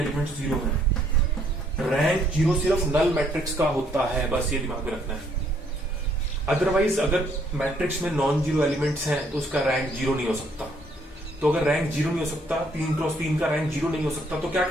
जीरो हैं, रैंक जीरो सिर्फ नल मैट्रिक्स का होता है, बस ये दिमाग में रखना है। अदरवाइज अगर मैट्रिक्स में नॉन जीरो एलिमेंट्स हैं तो उसका रैंक जीरो नहीं हो सकता। तो अगर रैंक जीरो नहीं हो सकता, 3x3 का रैंक जीरो नहीं हो सकता, तो क्या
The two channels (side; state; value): both; normal; correlation 0.67